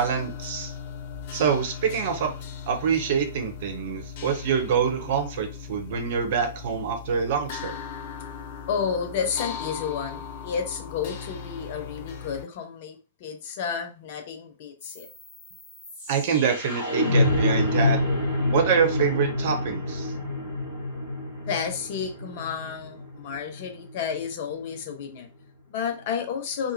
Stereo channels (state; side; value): inverted; both; correlation -0.45